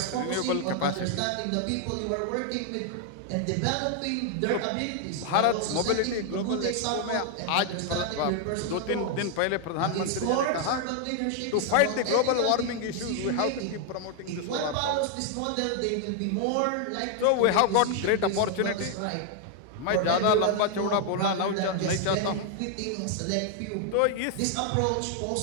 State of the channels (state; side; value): different; both; correlation 0.00